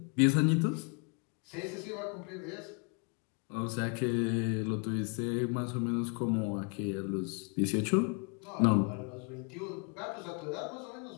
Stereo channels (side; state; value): right; quieter; 36.8 dB